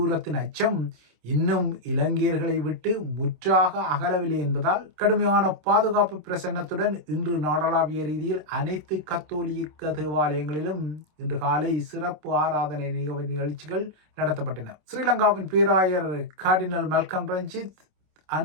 அச்சம் இன்னும் இலங்கையர்களை விட்டு முற்றாக அகலவில்லை என்பதால் கடுமையான பாதுகாப்பு பிரசன்னத்துடன் இன்று நாடளாவிய ரீதியில் அனைத்து கத்தோலிக்க தேவாலயங்களிலும் இன்று காலை சிறப்பு ஆராதனை நிகழ்ச்சிகள் நடத்தப்பட்டன. ஸ்ரீலங்காவின் பேராயர் கார்டினல் மல்கம் ரஞ்சித்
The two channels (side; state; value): left; late; 27 ms